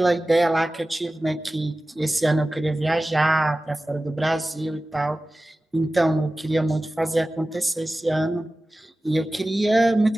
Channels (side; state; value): both; normal; correlation 0.96